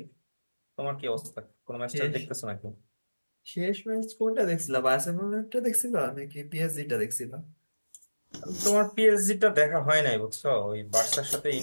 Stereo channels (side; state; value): both; inverted; correlation -1.00